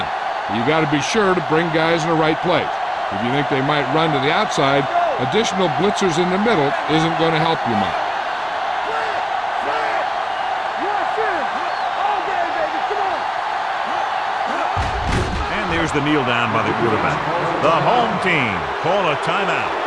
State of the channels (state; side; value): identical; both; correlation 1.00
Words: You got to be sure to bring guys in the right place. If you think they might run to the outside, additional blitzers in the middle isn't going to help you much. There's the kneel down by the quarterback. The home team call a timeout.